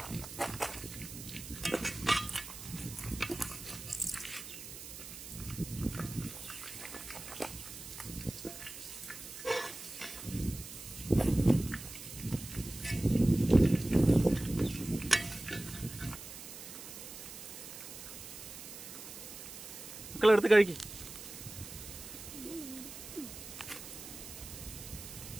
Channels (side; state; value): right; noise; hiss, 12 dB below the sound